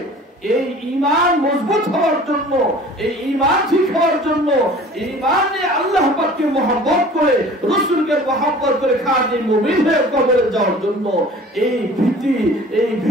এই ঈমান মজবুত হওয়ার জন্য, এই ঈমান ঠিক হওয়ার জন্য, ঈমানে আল্লাহ পাককে মহব্বত করে, রাসূলকে মহব্বত করে খাঁটি মুমিন হয়ে কবরে যাওয়ার জন্য, এই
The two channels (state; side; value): normal; both; correlation 0.46